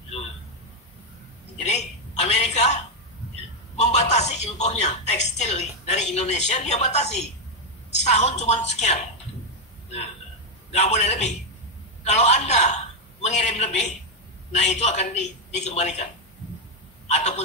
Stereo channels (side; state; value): both; normal; correlation 0.03